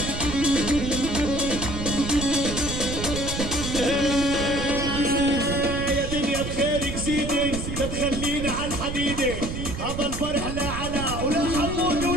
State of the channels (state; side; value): noise; right; rumble, 5 dB below the sound